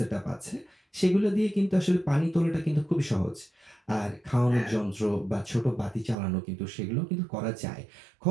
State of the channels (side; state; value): left; drops out; at 6.2 s